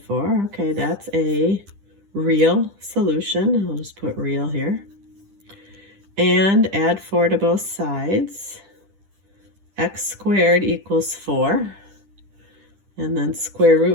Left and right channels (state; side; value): late; left; 10 ms